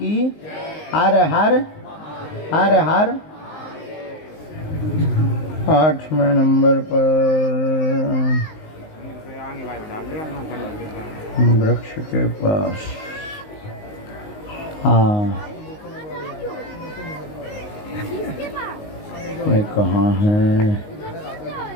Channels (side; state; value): right; late; 19 ms